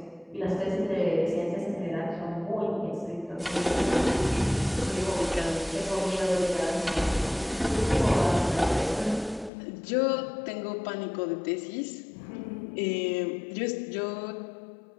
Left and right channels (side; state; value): right; drops out; at 9.5 s